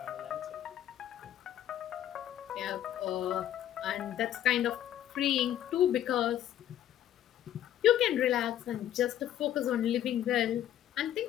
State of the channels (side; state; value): right; quieter; 11.4 dB